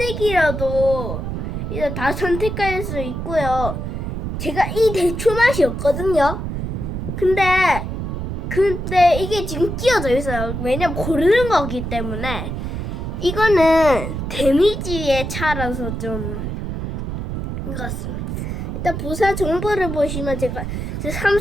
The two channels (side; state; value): right; noise; rumble, 4 dB below the sound